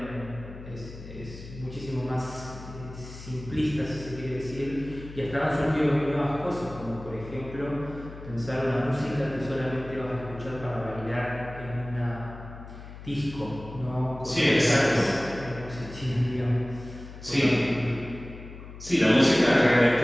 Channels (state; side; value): noise; left; hum, 14 dB below the sound